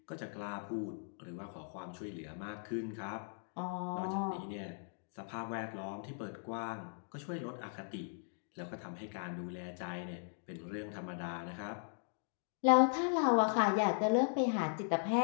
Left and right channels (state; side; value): silent; right; digital silence